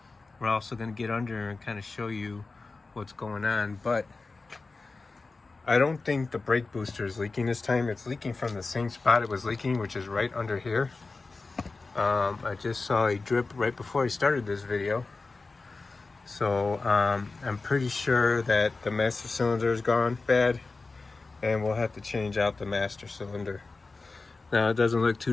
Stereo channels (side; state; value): right; quieter; 3.8 dB